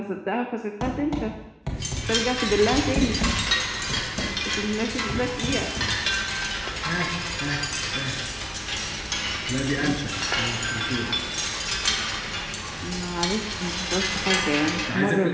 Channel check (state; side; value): identical; both; correlation 1.00